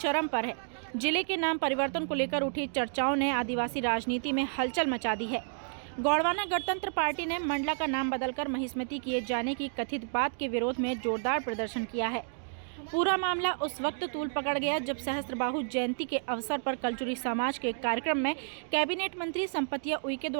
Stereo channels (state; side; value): silent; left; digital silence